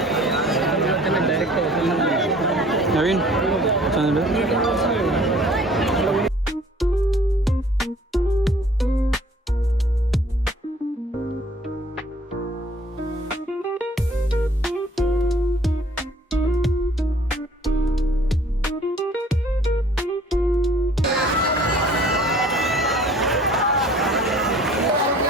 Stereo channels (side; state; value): both; normal; correlation 0.54